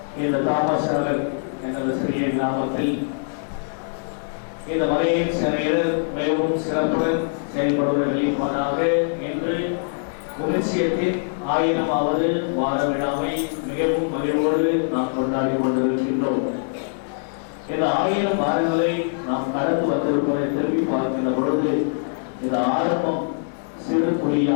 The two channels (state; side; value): silent; right; 63 dB below the other